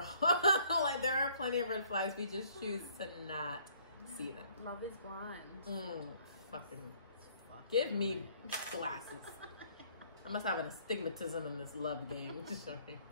Like, there are plenty of red flags. We just choose to not see them. Love is blind. Fucking give me glasses. I must have an astigmatism in this love game.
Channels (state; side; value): inverted; both; correlation -0.61